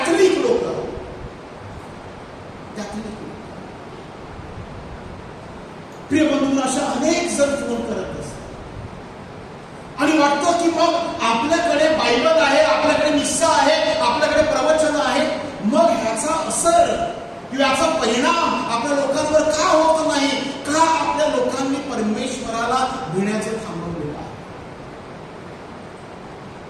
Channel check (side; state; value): both; identical; correlation 1.00